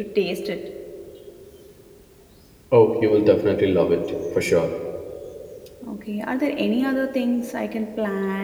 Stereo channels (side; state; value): both; identical; correlation 1.00